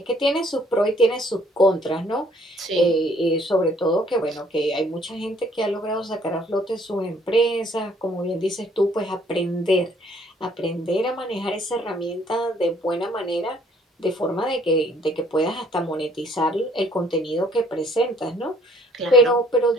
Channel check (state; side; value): normal; both; correlation 0.61